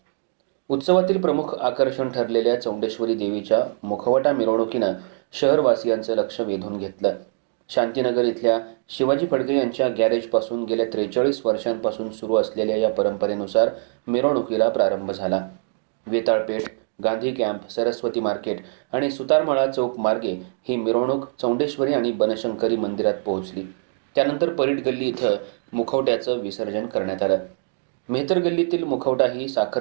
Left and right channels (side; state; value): left; silent; digital silence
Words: उत्सवातील प्रमुख आकर्षण ठरलेल्या चौंडेश्वरी देवीच्या मुखवटा मिरवणुकीनं शहरवासियांचं लक्ष वेधून घेतलं. शांतीनगर इथल्या शिवाजी फडके यांच्या गॅरेजपासून गेल्या 43 वर्षांपासून सुरू असलेल्या या परंपरेनुसार मिरवणुकीला प्रारंभ झाला. वेताळपेठ, गांधी कॅम्प, सरस्वती मार्केट आणि सुतारमळा चौक मार्गे ही मिरवणूक चौंडेश्वरी आणि बनशंकरी मंदिरात पोहोचली. त्यानंतर परीट गल्ली इथं मुखवट्याचं विसर्जन करण्यात आलं. मेहतर गल्लीतील मुखवटा ही